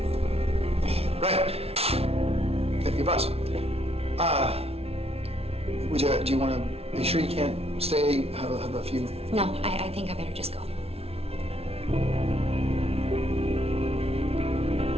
Right. Your bus. Do you want to be sure you can't stay, have a few? no, I think I better just go.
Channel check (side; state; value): left; late; 0.30 ms